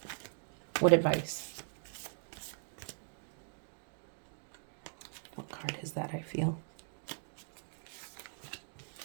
what advice? What card is that, I feel?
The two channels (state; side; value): silent; left; 51 dB below the other